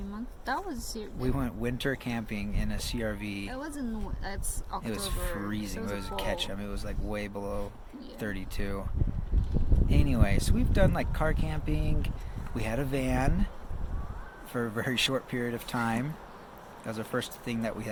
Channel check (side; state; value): both; identical; correlation 1.00